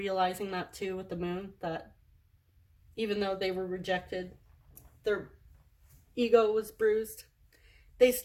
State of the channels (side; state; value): both; identical; correlation 1.00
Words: that too with the Moon, that even though they were rejected, their ego was bruised, they